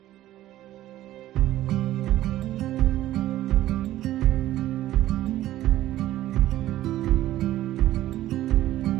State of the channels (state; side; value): quieter; left; 14.3 dB